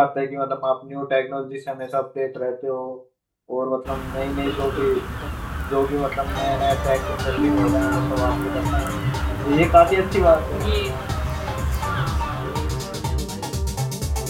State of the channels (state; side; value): identical; both; correlation 1.00